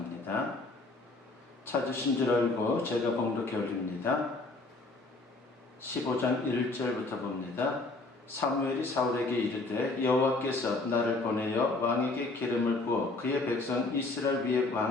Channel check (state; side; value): quieter; right; 3.3 dB